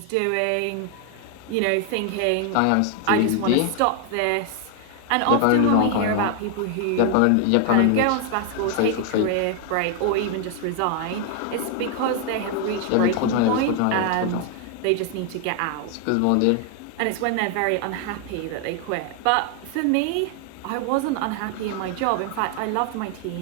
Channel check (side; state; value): both; different; correlation 0.00